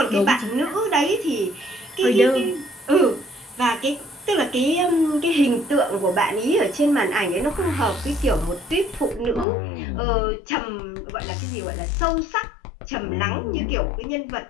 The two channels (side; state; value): right; drops out; at 9.5 s